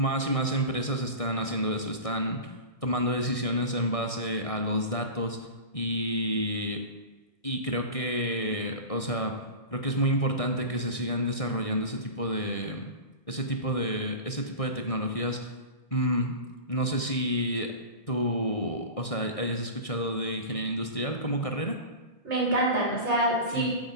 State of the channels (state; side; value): late; right; 1.6 ms